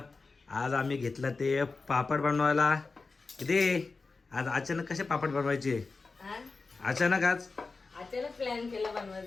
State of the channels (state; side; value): quieter; right; 4.1 dB